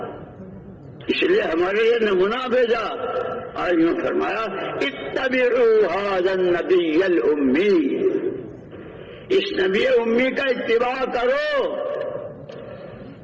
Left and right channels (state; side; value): identical; both; correlation 1.00